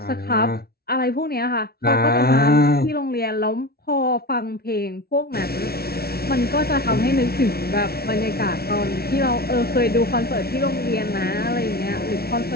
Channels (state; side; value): late; right; 0.45 ms